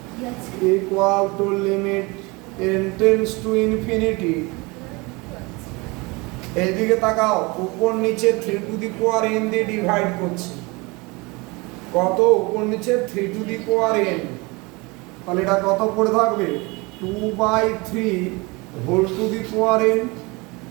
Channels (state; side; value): quieter; left; 25.8 dB